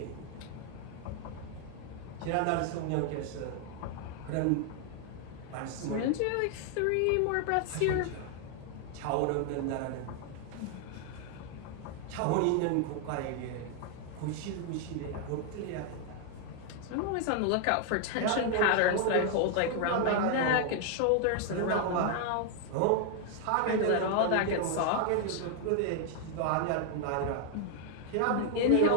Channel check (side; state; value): both; different; correlation 0.00